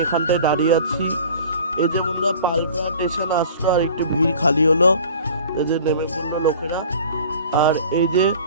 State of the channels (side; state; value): both; inverted; correlation -0.44